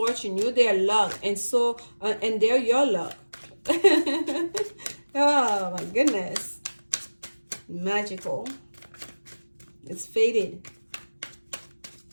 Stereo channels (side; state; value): both; inverted; correlation -1.00